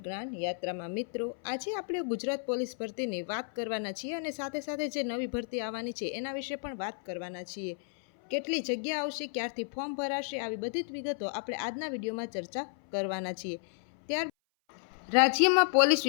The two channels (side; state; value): right; silent; 56 dB below the other